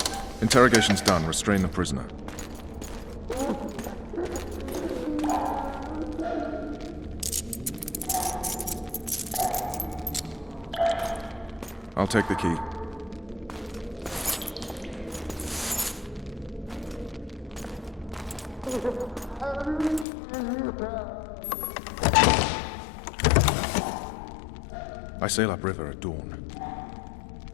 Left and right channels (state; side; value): drops out; right; at 20.1 s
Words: Interrogation's done. Restrain the prisoner. I'll take the key. I sail upriver at dawn.